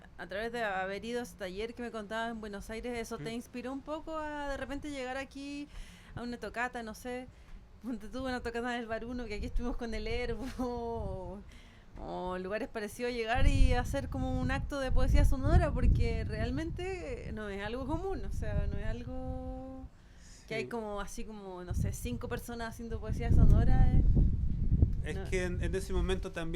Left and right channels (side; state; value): both; identical; correlation 1.00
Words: a través de haber ido a ese taller que me contabas en Buenos Aires, ¿eso te inspiró un poco a de repente llegar aquí a una tocata, no sé? Ponte tú una tocata del Baruno, que aquí estuvimos con el Herbo, o lugares parecidos, llegar y hacer como un acto de poesía sonora, porque realmente no es algo común, o sea, no es algo que hay Sí. como así como, no sé, 5 personas haciendo poesía sonora. Es No. que en ese momento